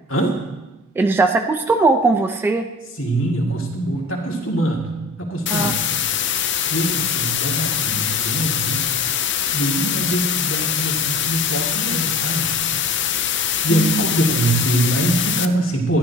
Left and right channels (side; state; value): both; normal; correlation 0.43